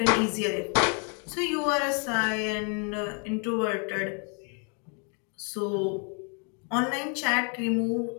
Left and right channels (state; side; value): quieter; right; 38.0 dB